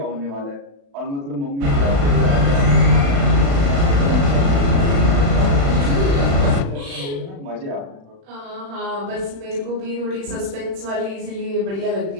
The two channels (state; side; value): late; left; 36 ms